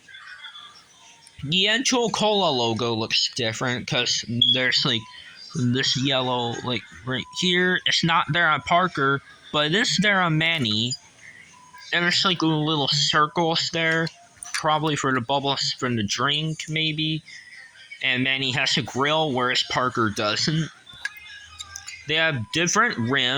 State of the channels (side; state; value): both; identical; correlation 1.00